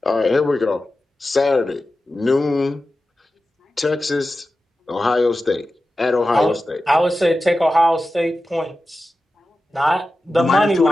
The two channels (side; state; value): both; normal; correlation 0.93